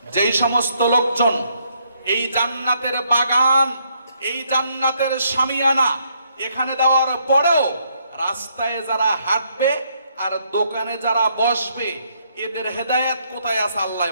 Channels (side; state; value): both; inverted; correlation -0.72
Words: যেই সমস্ত লোকজন এই জান্নাতের বাগান, এই জান্নাতের শামিয়ানা এখানে দেওয়ার পরেও রাস্তায় যারা হাঁটবে আর দোকানে যারা বসবে, এদের হেদায়েত কোথায় আছে আল্লাহ